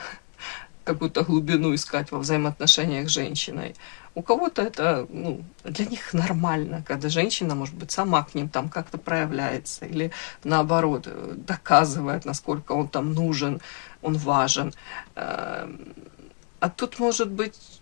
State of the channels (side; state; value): right; quieter; 37.4 dB